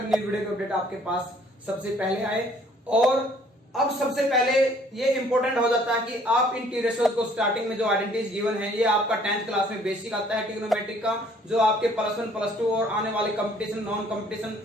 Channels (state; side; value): normal; both; correlation 0.59